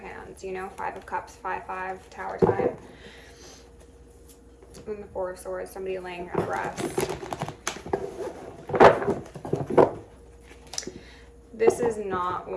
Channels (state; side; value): identical; both; correlation 1.00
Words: you know. Five of Cups, 5-5, Tower time. And the Four of Swords, somebody laying on rest. This is not